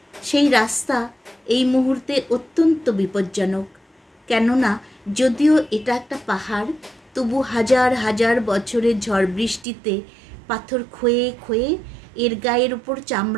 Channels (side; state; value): left; drops out; at 9.7 s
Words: সেই রাস্তা এই মুহূর্তে অত্যন্ত বিপজ্জনক। কেননা যদিও এটা একটা পাহাড়, তবু হাজার হাজার বছরের ঝড় বৃষ্টিতে পাথর ক্ষয়ে ক্ষয়ে এর গায়ের উপর